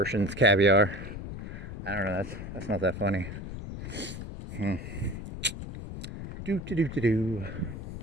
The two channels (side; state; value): left; noise; rumble, 8 dB below the sound